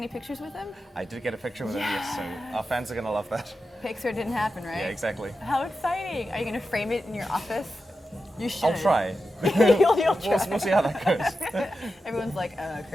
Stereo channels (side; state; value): both; normal; correlation 0.90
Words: pictures with him? I did get a picture with him, yes, so our fans are going to love that. Picture didn't happen, right? Yeah, exactly. How exciting. Are you going to frame it in your office? You should. I'll try. You'll try. We'll see how that goes. Everyone's like,